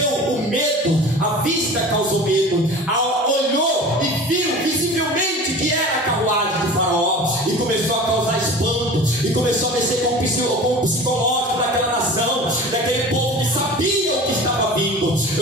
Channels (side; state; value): both; normal; correlation 0.38